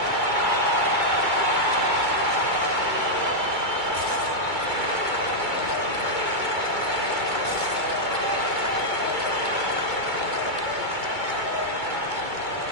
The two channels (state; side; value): late; left; 2.2 ms